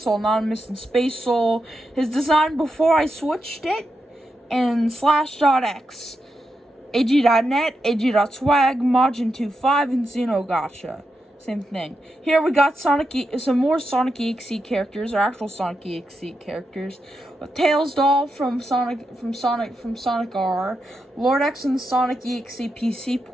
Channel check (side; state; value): both; normal; correlation 0.86